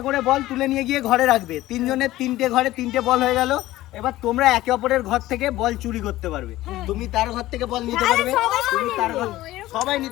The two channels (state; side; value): quieter; right; 16.2 dB